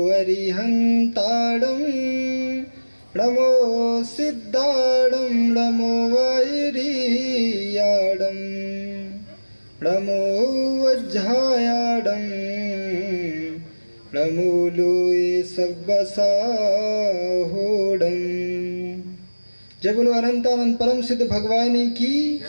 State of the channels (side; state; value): both; inverted; correlation -1.00